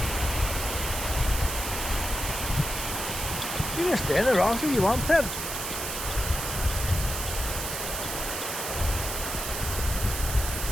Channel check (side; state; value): right; noise; hiss, 4 dB below the sound